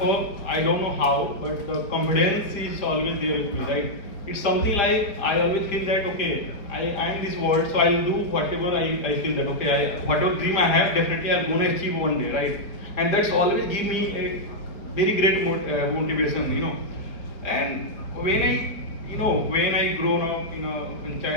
all, I don't know how, but the confidence is always there with me, right? It's something like I always think that okay, I am this world, so I'll do whatever I feel that okay, whatever dream I have, definitely I'm gonna achieve one day, right? And that's always give me a very great motivation, And when I grown up, in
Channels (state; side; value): late; right; 4.5 ms